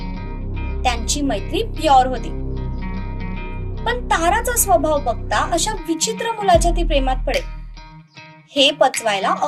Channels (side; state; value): both; identical; correlation 1.00